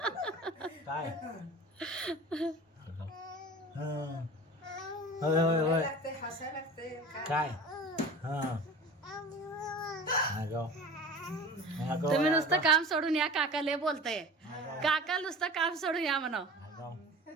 काय हं. होय होय होय हसायला लागते. काय हा आगाव आगाव तुम्ही नुसतं काम सोडून या. काका लय बोलताय. आगाव काका नुसतं काम सोडून या म्हणा. आगाव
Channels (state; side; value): normal; both; correlation 0.37